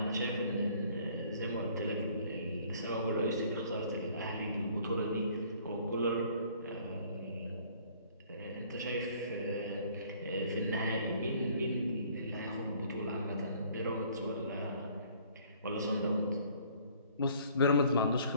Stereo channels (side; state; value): both; inverted; correlation -0.57